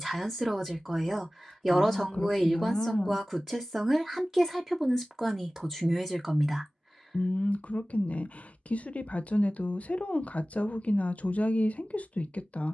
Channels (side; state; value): both; normal; correlation 0.97